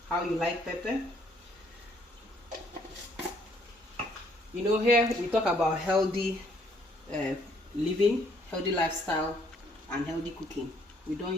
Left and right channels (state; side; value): normal; both; correlation 0.65